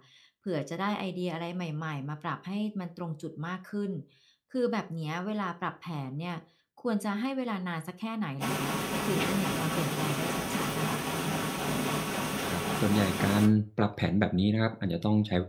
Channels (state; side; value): identical; both; correlation 1.00